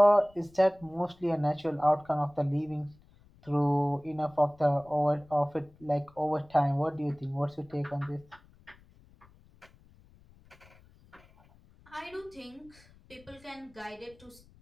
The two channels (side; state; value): left; noise; rumble, 27 dB below the sound